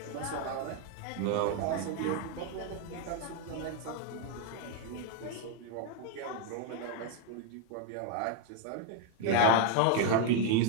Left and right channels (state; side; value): different; both; correlation 0.00